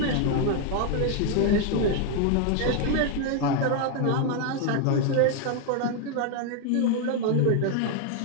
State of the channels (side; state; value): both; different; correlation 0.00